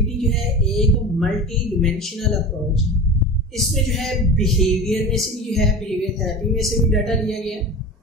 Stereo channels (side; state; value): both; normal; correlation 0.32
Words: जो है एक मल्टी डिमेंशनल अप्रोच है। इसमें जो है बिहेवियर में से भी जो है बिहेवियर थेरेपी में से भी डाटा लिया गया,